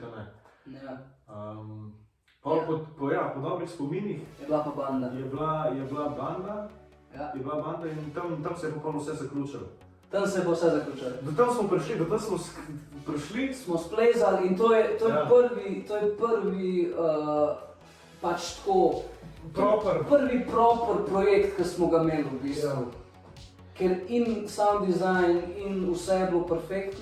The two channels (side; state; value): both; identical; correlation 1.00